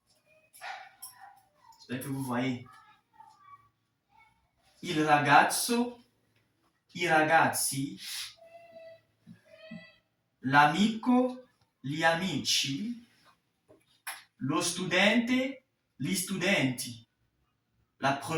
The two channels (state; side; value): identical; both; correlation 1.00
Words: J'espère que vous voyez. Il ragazzo, i ragazzi. L'amico, gli amici. Lo studente, gli studenti. La